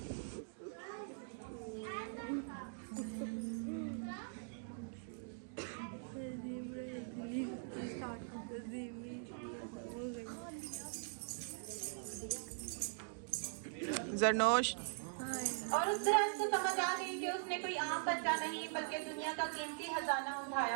जरनोश और उस दरख्त को समझ आ गई कि उसने कोई आम बच्चा नहीं बल्कि दुनिया का कीमती खजाना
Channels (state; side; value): silent; left; digital silence